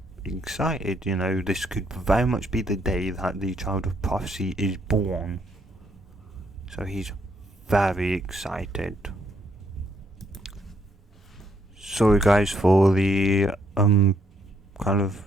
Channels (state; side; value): normal; both; correlation 0.72